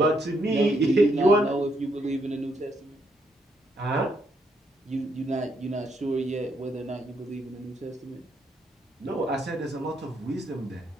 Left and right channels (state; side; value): normal; both; correlation 0.75